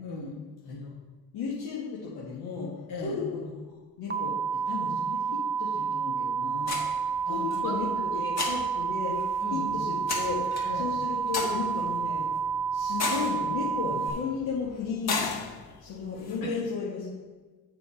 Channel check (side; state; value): both; normal; correlation 0.49